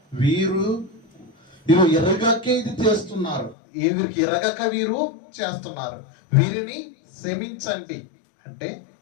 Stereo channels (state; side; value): drops out; right; at 3.6 s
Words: వీరు ఎరగకే ఇది చేస్తున్నారు, వీరికి ఎరగక వీరు చేస్తున్నారు, వీరిని క్షమించండి. అంటే